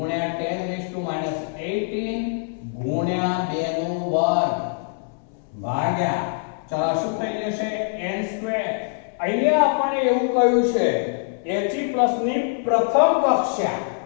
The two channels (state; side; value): silent; right; 63 dB below the other